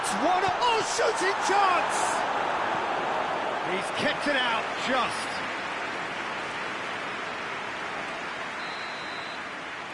one, oh, shooting chance! He's kept it out, just.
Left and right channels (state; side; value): identical; both; correlation 1.00